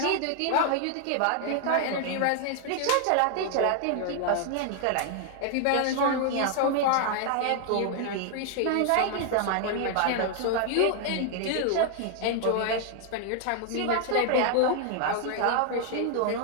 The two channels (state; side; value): different; both; correlation 0.00